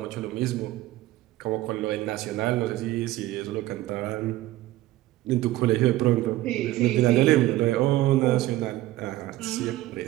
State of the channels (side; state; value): left; quieter; 16.1 dB